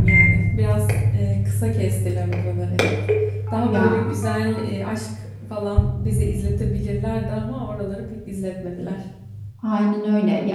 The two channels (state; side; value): identical; both; correlation 1.00